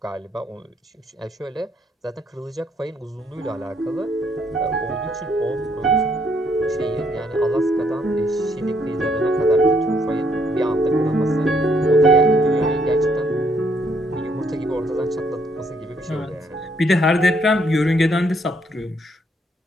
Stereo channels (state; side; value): normal; both; correlation 0.70